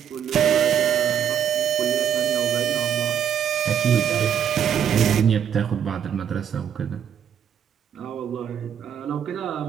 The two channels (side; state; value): left; quieter; 8.5 dB